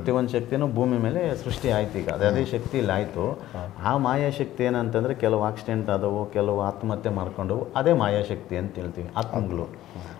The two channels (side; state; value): right; quieter; 14.0 dB